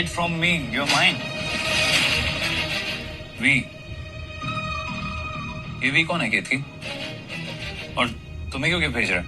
from me, your mind. V, ये वी कौन है केतकी? और तुम्हें क्यों गिफ्ट भेज रहा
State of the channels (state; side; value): identical; both; correlation 1.00